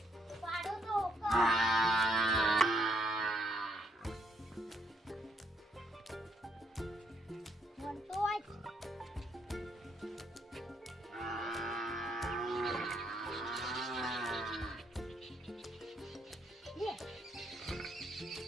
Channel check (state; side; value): normal; both; correlation 0.73